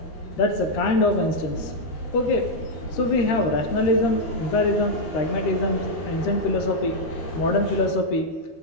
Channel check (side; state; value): right; late; 13 ms